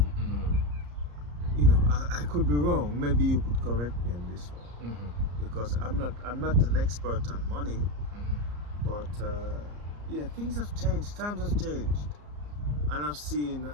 I could be wrong. Maybe you could correct me on this one, because I'm not an expert on money, but yeah, things have changed. Times have changed, and I've seen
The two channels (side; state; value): left; late; 34 ms